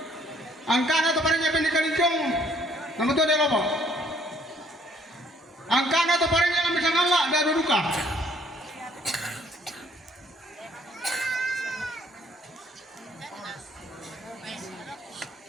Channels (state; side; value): normal; both; correlation 0.62